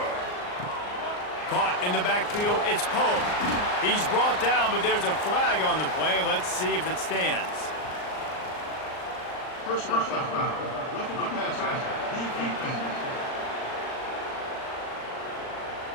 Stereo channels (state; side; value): late; right; 39 ms